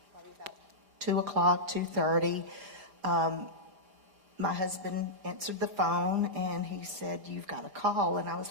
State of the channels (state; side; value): late; left; 4.9 ms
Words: about 2 o'clock, 2:30. My husband answered the phone, and he said, "You've got a call." And I was